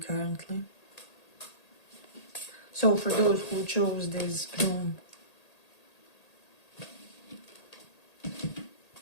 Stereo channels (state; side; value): late; right; 1.8 ms